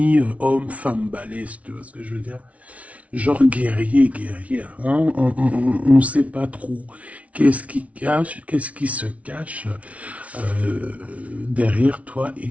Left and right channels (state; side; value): late; left; 0.066 ms